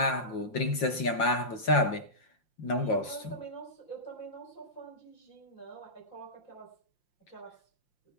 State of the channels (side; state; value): right; late; 5.7 ms